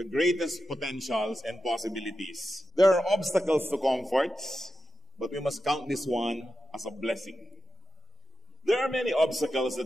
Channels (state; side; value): normal; both; correlation 0.90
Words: greatest potentials and possibilities. There are obstacles to comforts, but we must count this one as a blessing. There are many obstacles